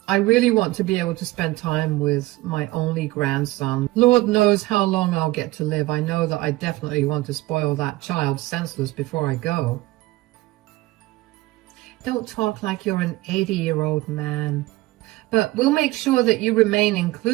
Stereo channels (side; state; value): left; quieter; 19.0 dB